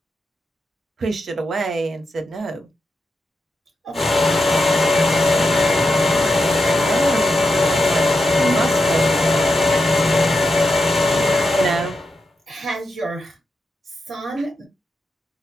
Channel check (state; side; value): normal; both; correlation 0.87